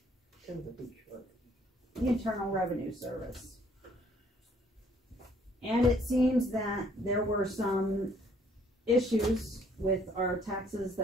the Internal Revenue Service. And it seems that there were some issues with our taxes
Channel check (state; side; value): normal; both; correlation 0.62